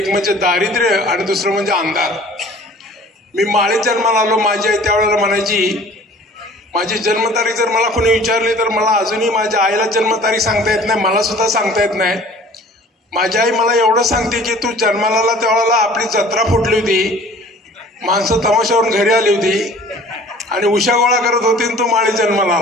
म्हणजे दारिद्र्य आणि दुसरं म्हणजे अंधार। मी माळीत जन्माला आलो। माझी आई त्यावेळेला म्हणायची, माझी जन्मतारीख जर मला कोणी विचारली तर मला अजूनही माझ्या आईला जन्मतारीख सांगता येत नाही, मला सुद्धा सांगता येत नाही। माझी आई मला एवढं सांगते की तू जन्माला आला त्यावेळेला आपली जत्रा फुटली होती, माणसं तमाशावरून घरी आली होती आणि उशा गोळा करत होती आणि तू माळीत जन्माला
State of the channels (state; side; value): normal; both; correlation 0.48